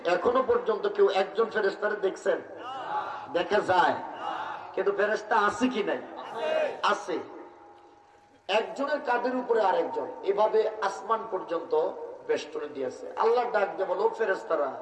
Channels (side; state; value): both; identical; correlation 1.00